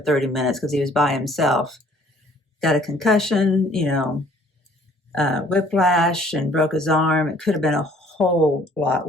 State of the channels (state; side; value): normal; both; correlation 0.57